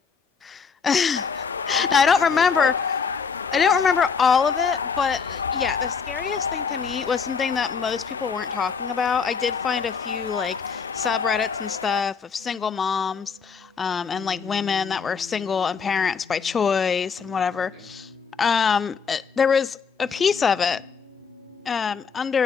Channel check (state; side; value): quieter; right; 5.9 dB